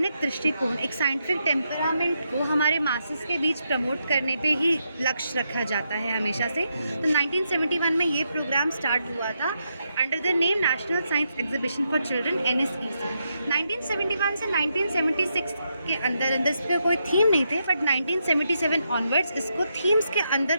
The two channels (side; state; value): both; inverted; correlation -0.82